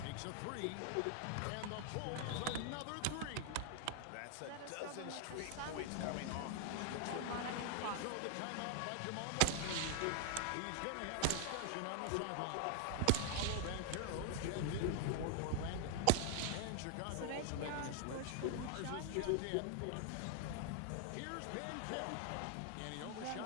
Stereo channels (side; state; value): both; different; correlation 0.00